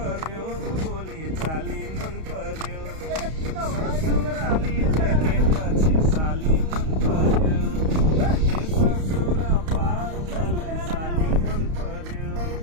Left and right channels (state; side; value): late; left; 32 ms